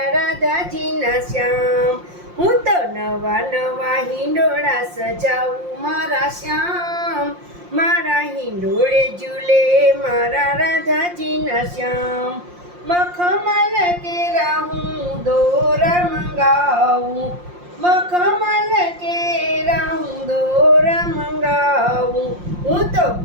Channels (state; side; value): late; left; 5.7 ms